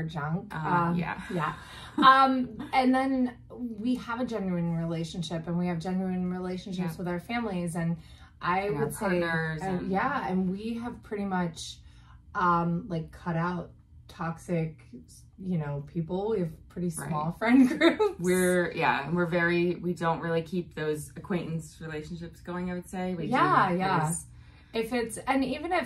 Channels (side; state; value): both; identical; correlation 1.00